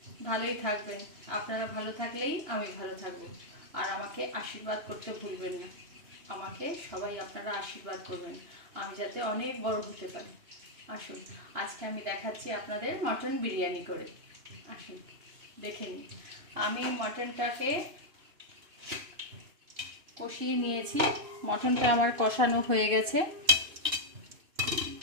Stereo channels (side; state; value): left; late; 2.9 ms